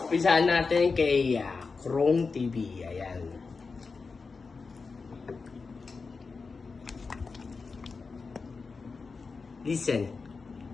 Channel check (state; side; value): quieter; right; 4.5 dB